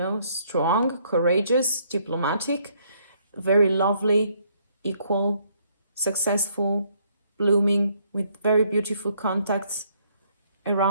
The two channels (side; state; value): both; inverted; correlation -0.68